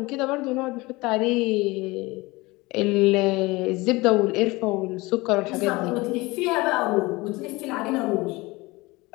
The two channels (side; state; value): right; quieter; 22.4 dB